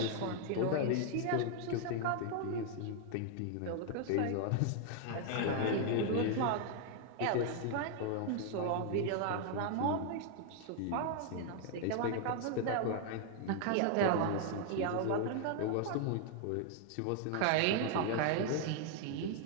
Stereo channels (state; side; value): different; both; correlation 0.00